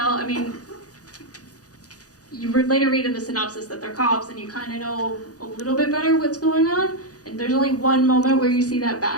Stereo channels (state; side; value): late; right; 0.67 ms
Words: I mean, you later read in the synopsis that they're cops and you kind of know a little bit better what's going on. And there's only one moment where you see that